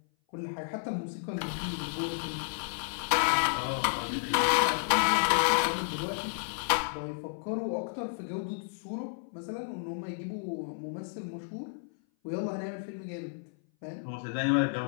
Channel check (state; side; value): silent; right; 56 dB below the other